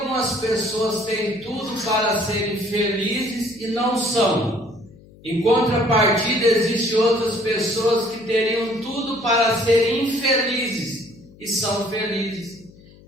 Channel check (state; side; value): noise; left; hum, 24 dB below the sound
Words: pessoas têm tudo para serem felizes e não são? Em contrapartida, existem outras pessoas que teriam tudo para serem infelizes e são felizes.